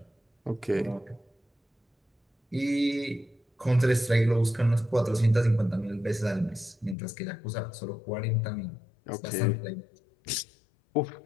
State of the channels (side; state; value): right; drops out; at 7.0 s